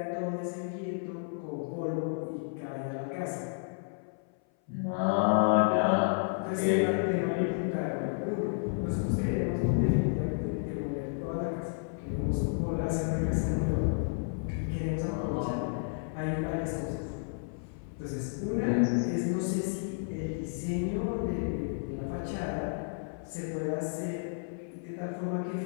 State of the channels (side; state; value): right; silent; 57 dB below the other